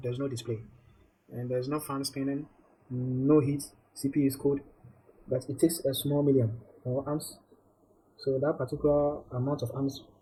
there's no display, and there's no fan spinning, no heat. CPU is cold, but it takes a small million or amps. So that particular amount of amps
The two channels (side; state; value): both; identical; correlation 1.00